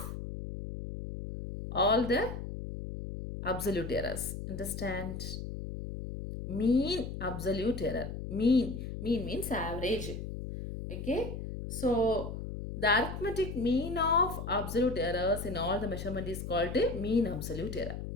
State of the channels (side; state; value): left; noise; hum, 7 dB below the sound